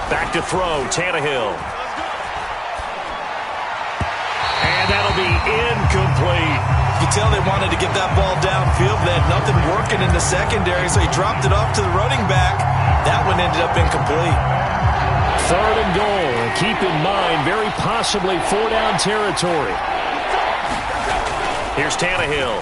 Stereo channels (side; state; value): both; identical; correlation 1.00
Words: Back to throw, Tannehill. And that'll be incomplete. You can tell they wanted to get that ball downfield. They had nothing working in the secondary, so he dropped it off to the running back. That one ended up incomplete. 3rd and goal. And keep in mind, very possibly 4-down territory. Here's Tannehill.